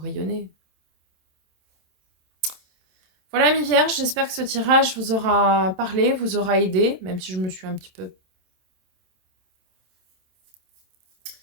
rayonner. Voilà, mi Vierge, j'espère que ce tirage vous aura parlé, vous aura aidé, même si je me suis un petit peu...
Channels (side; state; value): left; late; 27 ms